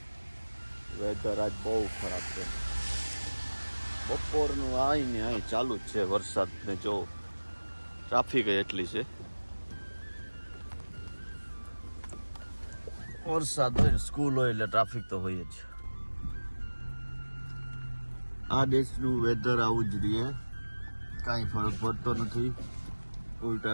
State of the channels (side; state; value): both; inverted; correlation -1.00